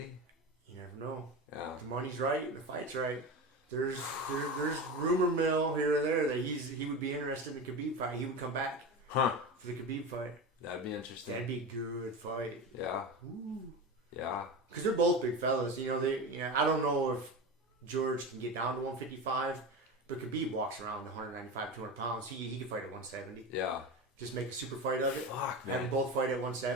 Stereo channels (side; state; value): both; normal; correlation 0.25